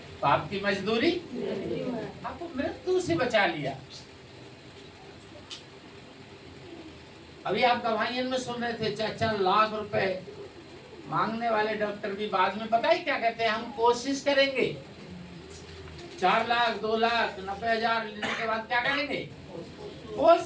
पाप की मजदूरी आपको मृत्यु से बचा लिया। अभी आप गवाहियन में सुन रहे थे, 4 लाख रुपए मांगने वाले डॉक्टर भी बाद में पता ही क्या कहते हैं, हम कोशिश करेंगे। 4 लाख, 2 लाख, 90,000 लेने के बाद क्या करेंगे?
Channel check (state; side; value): identical; both; correlation 1.00